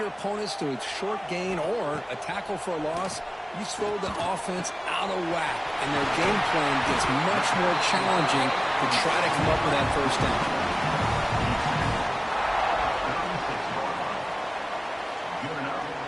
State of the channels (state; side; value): identical; both; correlation 1.00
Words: opponents to a short gain or a tackle for a loss, you throw the offense out of whack, and their game plan gets much more challenging to try to come up with that first down.